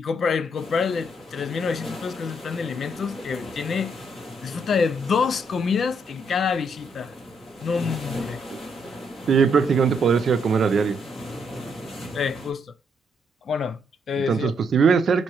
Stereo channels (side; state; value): both; normal; correlation 0.74